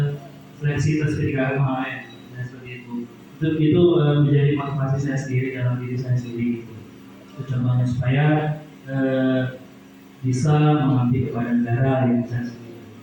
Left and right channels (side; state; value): both; identical; correlation 1.00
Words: seleksi tes PDKM kemarin, ya seperti itu. Itu menjadi motivasi saya sendiri dalam diri saya sendiri. Itu contohnya supaya bisa mengabdi kepada negara yang saya sendiri.